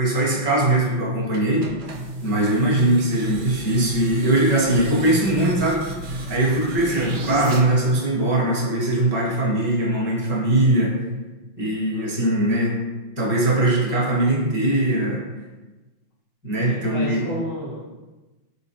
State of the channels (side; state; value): right; late; 5.8 ms